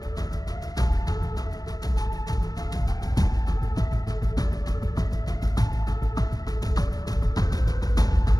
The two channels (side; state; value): right; late; 0.18 ms